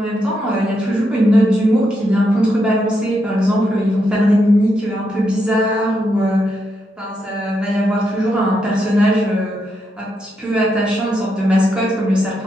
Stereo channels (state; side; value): normal; both; correlation 0.81